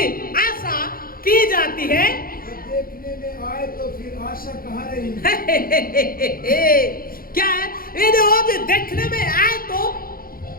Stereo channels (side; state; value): right; late; 0.42 ms